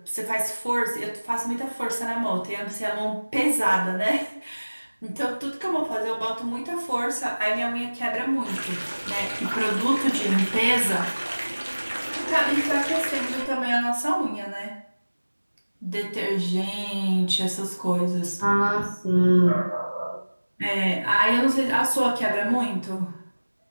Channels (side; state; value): both; inverted; correlation -1.00